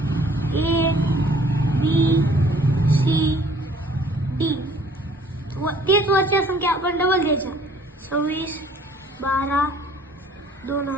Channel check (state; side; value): normal; both; correlation 0.56